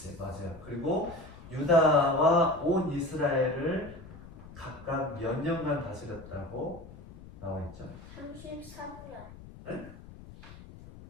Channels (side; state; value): left; noise; rumble, 17 dB below the sound